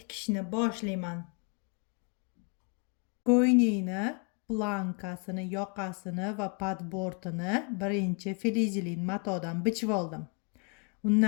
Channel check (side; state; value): right; quieter; 35.6 dB